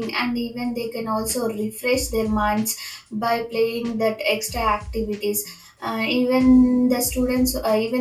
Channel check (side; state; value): both; identical; correlation 1.00